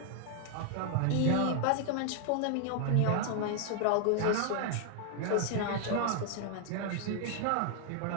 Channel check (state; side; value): different; both; correlation 0.00